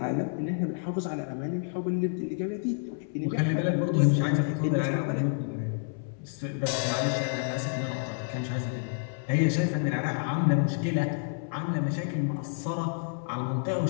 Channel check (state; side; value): silent; right; 59 dB below the other